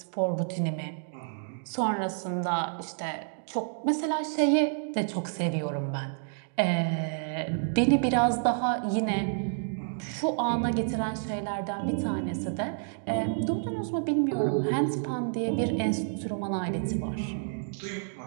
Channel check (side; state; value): left; silent; digital silence